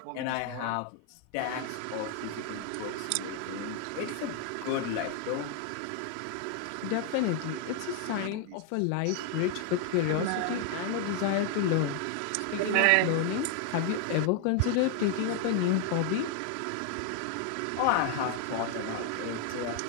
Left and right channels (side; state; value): both; different; correlation 0.00